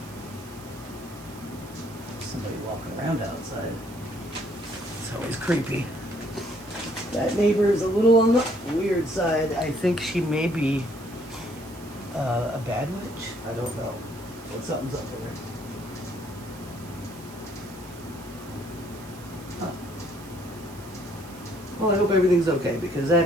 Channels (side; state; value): right; noise; hiss, 21 dB below the sound